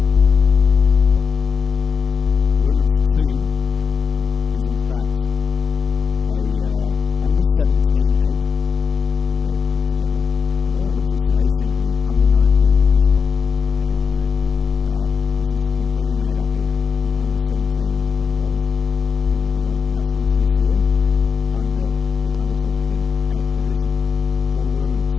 Wilderness 2 is in fact a under 17 8 that they've put together. Oh, interesting. Racing in the under 19 division. Okay, so this is completely made up of the under 17 rowers who will be going to nationals this year under the under 17 8 division for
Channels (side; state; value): right; quieter; 5.9 dB